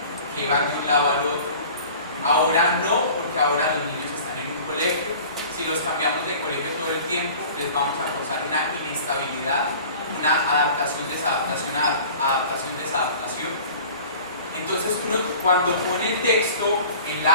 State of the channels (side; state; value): both; inverted; correlation -0.44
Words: que iban de un lado al otro. Ahora no, porque ahora los niños están en un colegio. Si los cambiamos de colegio todo el tiempo, les vamos a causar una inestabilidad, una adaptación, desadaptación, adaptación, desadaptación. Entonces uno cuando pone el texto en